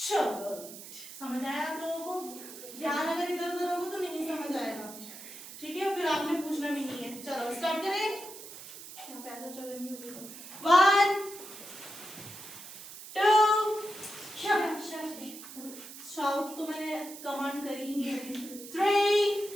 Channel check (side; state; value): right; noise; hiss, 13 dB below the sound